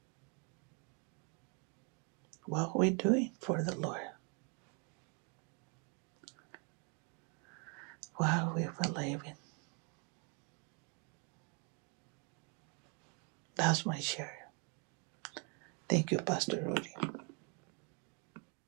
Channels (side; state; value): left; quieter; 36.0 dB